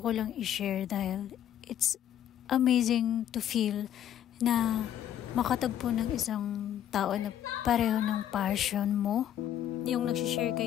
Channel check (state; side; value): quieter; right; 10.7 dB